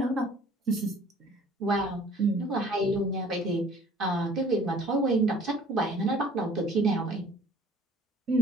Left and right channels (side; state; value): both; normal; correlation 0.52